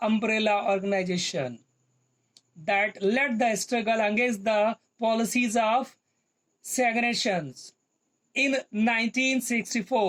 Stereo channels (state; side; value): identical; both; correlation 1.00